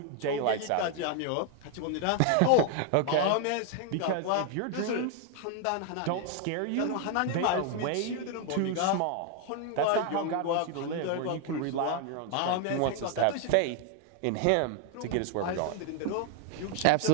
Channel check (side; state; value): both; different; correlation 0.00